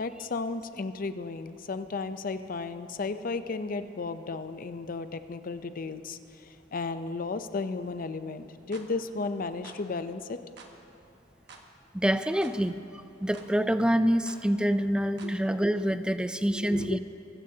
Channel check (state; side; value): normal; both; correlation 0.75